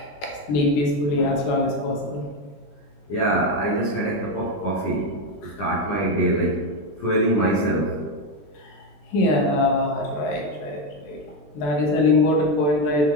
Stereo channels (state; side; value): late; right; 20 ms